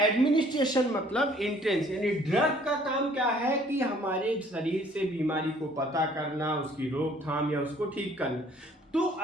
एडमिनिस्ट्रेशन मतलब एंट्रेंस, यानी ड्रग का काम क्या है कि हमारे शरीर से बीमारी को पता करना, उसकी रोकथाम या उसको ठीक करना। तो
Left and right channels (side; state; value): both; normal; correlation 0.58